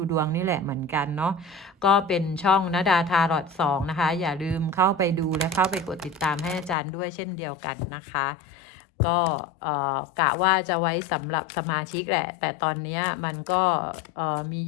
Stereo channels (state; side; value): drops out; right; at 6.8 s